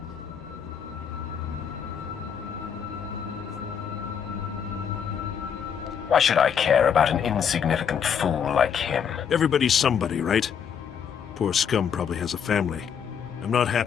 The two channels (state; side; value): quieter; right; 7.6 dB